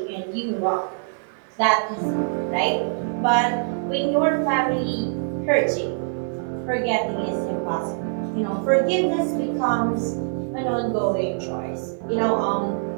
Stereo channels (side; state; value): left; silent; digital silence